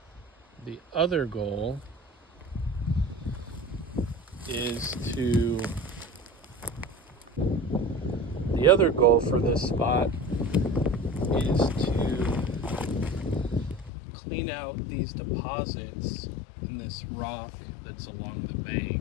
The other goal for this spot is to clean out these deposits in this rock that's along the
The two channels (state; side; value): drops out; right; at 13.9 s